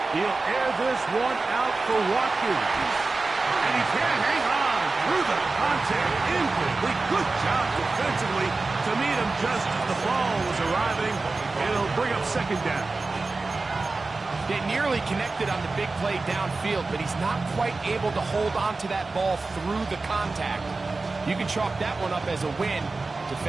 He'll air this one out for Watkins. And he can't hang on through the contact. Incomplete. Good job defensively to meet him just as the ball was arriving. It'll bring up 2nd down. They nearly connected on the big play downfield, but he's not quite able to hold on to that ball through the contact. You can chalk that one up as a win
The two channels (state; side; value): quieter; left; 3.6 dB